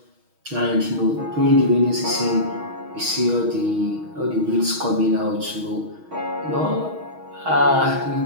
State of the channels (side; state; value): left; late; 6.3 ms